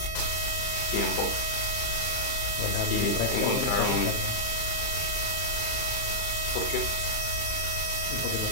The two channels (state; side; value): late; right; 34 ms